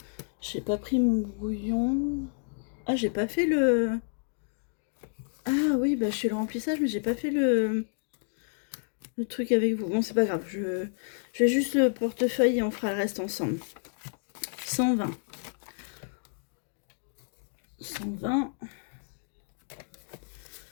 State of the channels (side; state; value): right; silent; digital silence